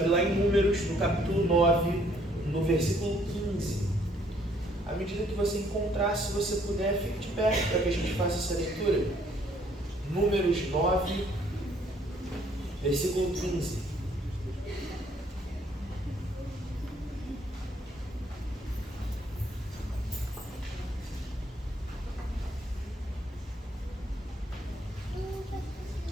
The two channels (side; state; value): both; normal; correlation 0.65